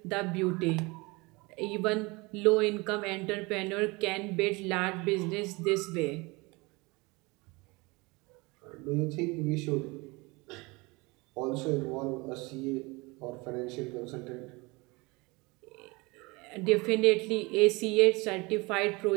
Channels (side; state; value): left; quieter; 25.2 dB